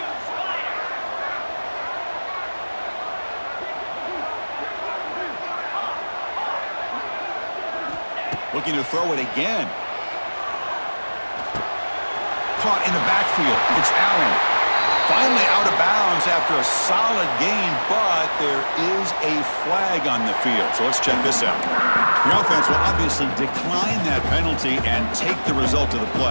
Looking to throw it again. Caught in the backfield. It's Allen. Finally out of bounds after a solid gain, but there is a flag on the field. So let's check this out. The offense will obviously decline that penalty and take the result of the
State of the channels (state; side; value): inverted; both; correlation -1.00